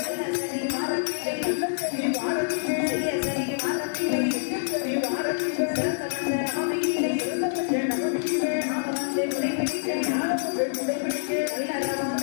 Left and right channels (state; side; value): silent; right; digital silence